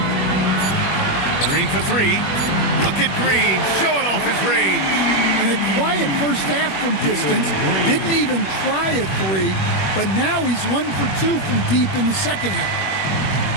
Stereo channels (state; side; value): late; right; 21 ms